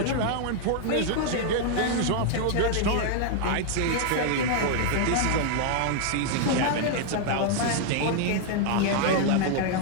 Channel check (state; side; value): different; both; correlation 0.00